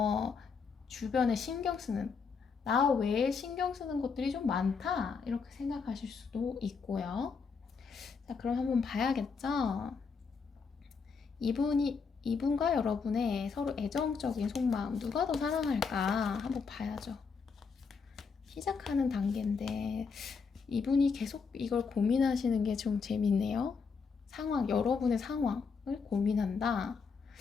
주변에 신경 쓰는 나 외에 신경 쓰는 것들이 좀 많다 이렇게 생각하실 수도 있고요. 자, 그럼 한번 봐야겠죠. 이분과 여러분의 서로 애정적인 속마음 누가 더 사랑할까 한번 봐야죠. 시작하는 단계인데 이분이 계속 이걸 고민하시는 게 좀 재밌네요. 여러분의 상황을 고민한다.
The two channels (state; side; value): quieter; right; 5.4 dB